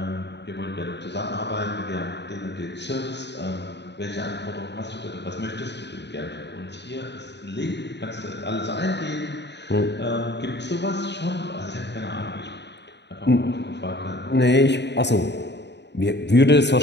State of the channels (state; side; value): late; right; 0.50 ms